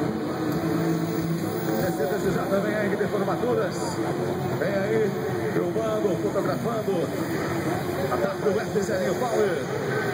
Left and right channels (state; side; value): identical; both; correlation 1.00